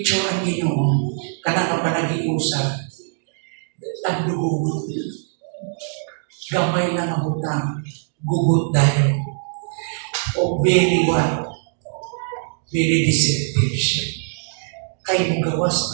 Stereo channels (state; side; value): silent; left; 64 dB below the other